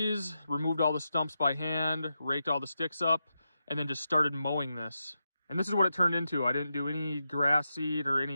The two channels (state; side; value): inverted; both; correlation -0.88